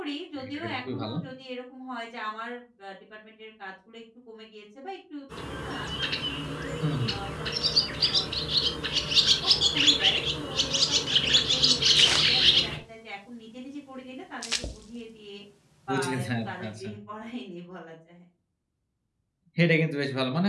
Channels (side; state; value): both; identical; correlation 1.00